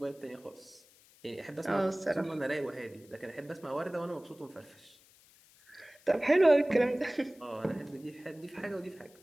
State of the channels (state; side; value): noise; left; hiss, 27 dB below the sound